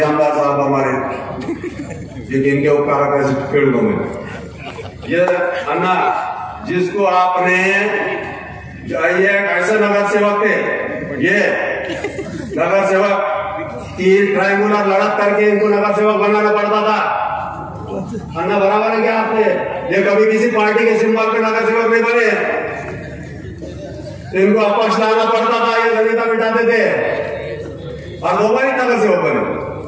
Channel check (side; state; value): both; identical; correlation 1.00